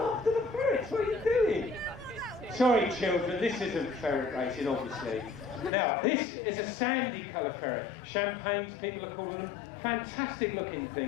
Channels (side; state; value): right; drops out; at 5.7 s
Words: the ferrets. What are you doing? Sorry children, this isn't ferret racing obviously. Now this is a sandy colour ferret. Champagnes, people are calling them. Fantastic looking